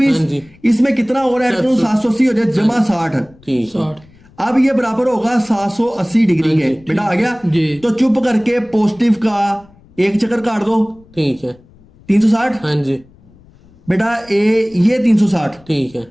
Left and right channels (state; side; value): noise; left; rumble, 28 dB below the sound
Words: इसमें कितना और ऐड करूं, 780 हो जाए जमा 60। अब ये बराबर होगा 780 डिग्री के, बेटा आ गया। तो चुप करके पॉजिटिव का एक चक्कर काट दो, ठीक है, 360, हाँ जी बेटा ये 360, ठीक है।